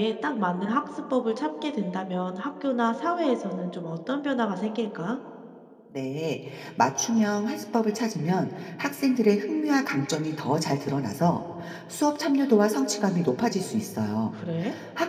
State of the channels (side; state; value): both; identical; correlation 1.00